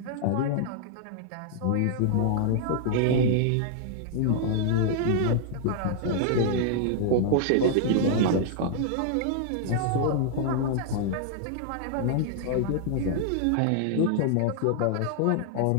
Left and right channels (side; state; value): both; different; correlation 0.00